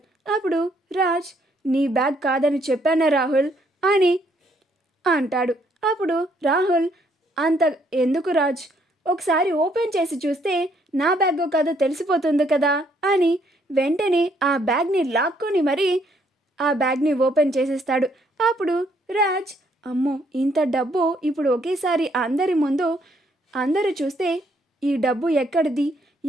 అప్పుడు రాజ్, నీ బ్యాగ్ కాదని చెప్పానా రాహుల్ అని అంటాడు. అప్పుడు రాహుల్, అంత ఎందుకు రాజ్, ఒకసారి ఓపెన్ చేసి చూస్తే నా బ్యాగో కాదో తెలిసిపోతుంది కదా అని వెంటనే ఆ బ్యాగ్ని లాక్కొని మరీ ఆ బ్యాగ్ని ఓపెన్ చేసేస్తాడు. అప్పుడు రాజ్, అమ్మో, ఇంత డబ్బు ఇప్పుడు ఒకేసారి అందరి ముందు అందరూ చూస్తే ఈ డబ్బు ఎక్కడిది,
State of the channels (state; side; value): normal; both; correlation 0.69